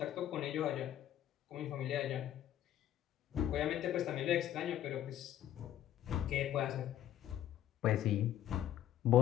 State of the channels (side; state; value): right; quieter; 11.9 dB